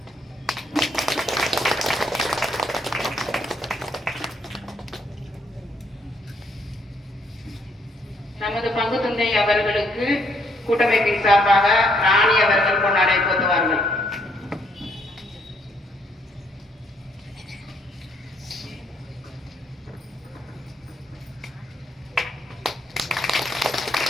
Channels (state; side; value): normal; both; correlation 0.70